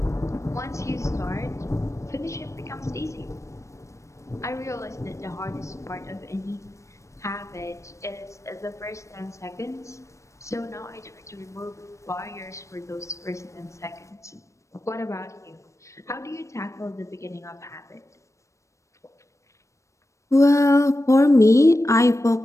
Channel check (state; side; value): late; right; 0.15 ms